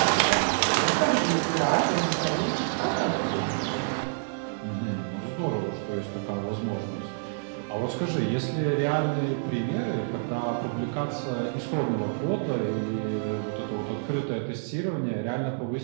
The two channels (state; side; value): silent; left; digital silence